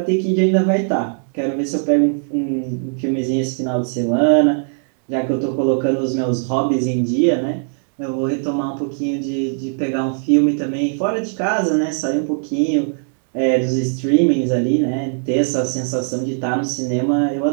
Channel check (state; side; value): silent; left; 66 dB below the other